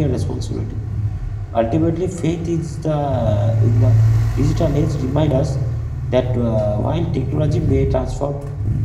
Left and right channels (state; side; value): identical; both; correlation 1.00